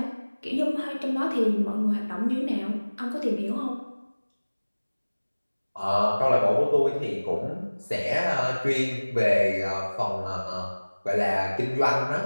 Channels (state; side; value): inverted; both; correlation -1.00